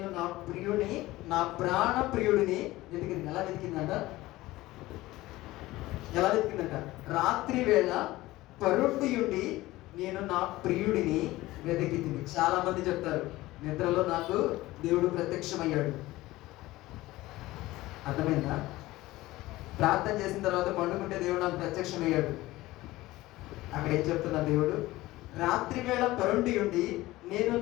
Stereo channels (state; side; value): quieter; right; 18.0 dB